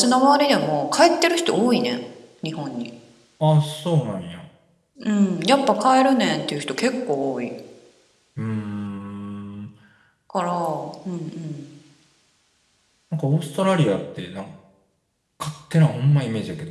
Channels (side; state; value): both; identical; correlation 1.00